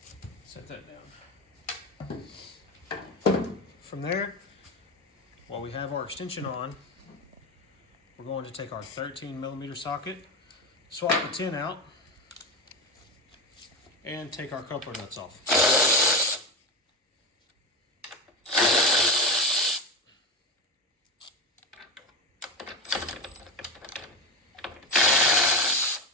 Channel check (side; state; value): both; normal; correlation 0.20